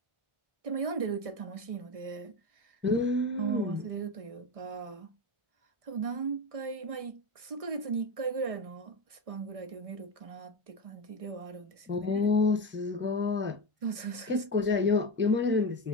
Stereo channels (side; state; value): left; late; 1.6 ms